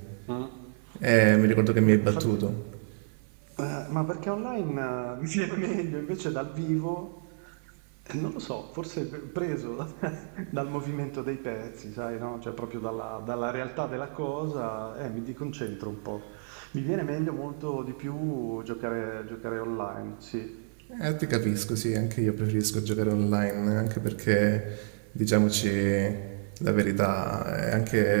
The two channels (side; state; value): left; silent; 55 dB below the other